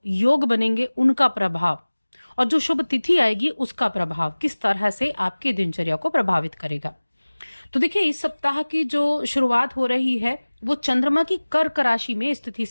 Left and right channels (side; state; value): both; inverted; correlation -1.00